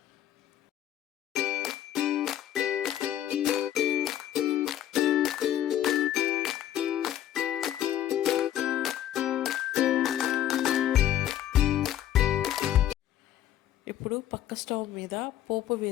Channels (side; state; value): right; quieter; 11.7 dB